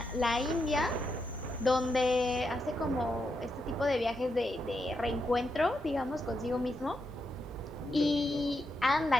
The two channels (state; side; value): normal; both; correlation 0.83